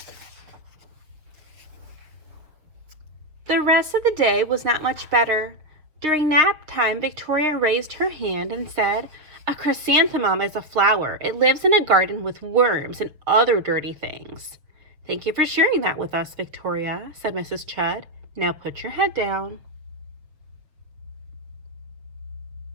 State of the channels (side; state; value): left; late; 6.9 ms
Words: The rest of the day was not much better. During nap time, Victoria raised her hand and said, "A chrysanthemum is a flower. It lives in a garden with worms and other dirty things." "Thank you for sharing that with us, Victoria," said Mrs. Chud. "Now put your head down."